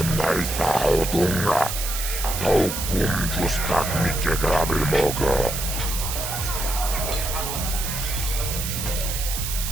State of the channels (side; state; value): right; noise; hiss, 4 dB below the sound